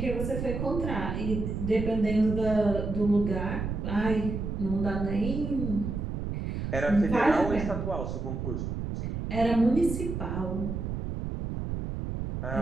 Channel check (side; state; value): right; noise; rumble, 4 dB below the sound